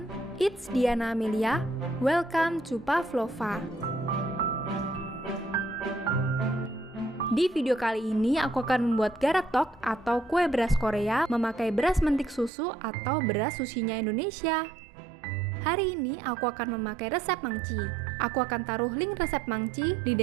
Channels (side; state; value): left; drops out; at 12.5 s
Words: it's Diana Amelia. Welcome to Pavlova. Di video kali ini aku akan membuat garetok atau kue beras Korea memakai beras mentik susu atau beras susinya Indonesia. Hari ini aku akan memakai resep mangci. Aku akan taruh link resep mangci di